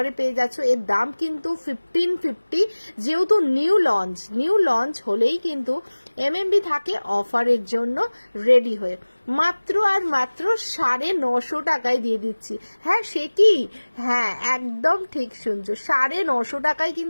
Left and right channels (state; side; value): inverted; both; correlation -1.00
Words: পেয়ে যাচ্ছ। এর দাম কিন্তু 1550, যেহেতু নিউ লঞ্চ হলেই কিন্তু এমএমবি থাকে অফারের জন্য রেডি হয়ে, মাত্র আর মাত্র 950 টাকায় দিয়ে দিচ্ছি। হ্যাঁ সে কি, হ্যাঁ একদম ঠিক শুনছো, 950 টাকায়